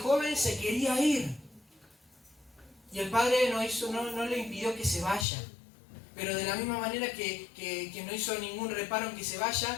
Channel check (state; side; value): drops out; right; at 5.2 s